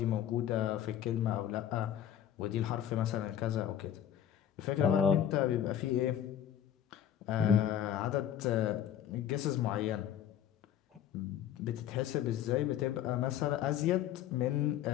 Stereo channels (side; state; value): right; quieter; 10.3 dB